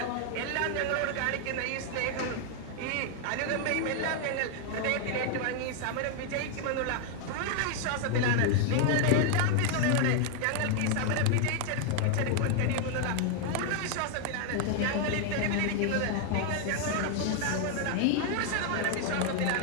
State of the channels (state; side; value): different; both; correlation 0.00